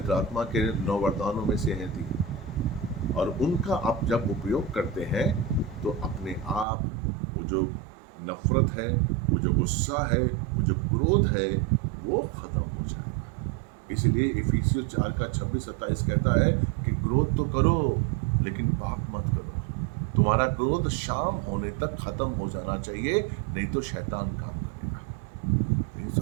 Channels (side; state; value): left; drops out; at 6.7 s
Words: आत्मा के 9 वरदानों में से है थी। और उनका आप जब उपयोग करते हैं तो अपने आप वो जो नफरत है, वो जो गुस्सा है, वो जो क्रोध है, वो खत्म हो जाएगा। इसलिए इफिसियों 4 का 26-27 कहता है कि क्रोध तो करो लेकिन पाप मत करो। तुम्हारा क्रोध शाम होने तक खत्म हो जाना चाहिए, नहीं तो शैतान काम